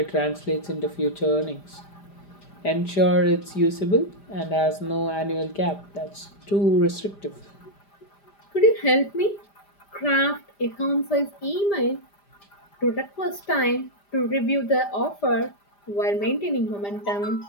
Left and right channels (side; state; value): right; late; 5.0 ms